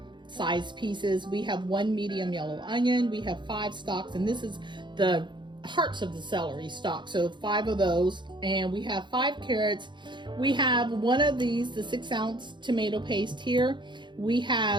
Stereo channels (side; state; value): left; late; 0.22 ms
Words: sized pieces. We have 1 medium yellow onion. We have 5 stalks, and this is the hearts of the celery stalk, so 5 of those. And we have 5 carrots. We have one of these, the 6-ounce tomato paste here. We